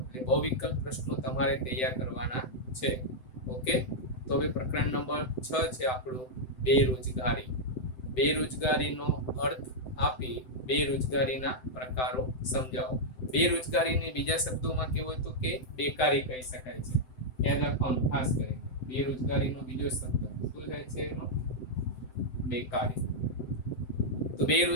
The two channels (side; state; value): right; late; 7.8 ms